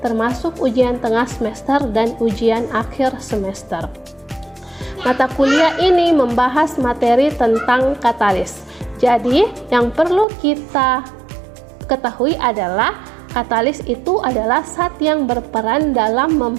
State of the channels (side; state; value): left; drops out; at 10.2 s